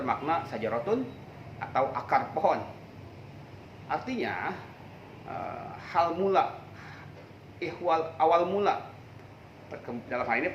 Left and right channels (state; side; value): identical; both; correlation 1.00